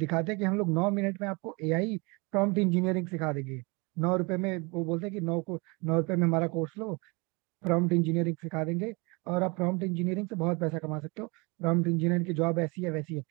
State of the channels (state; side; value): quieter; left; 28.3 dB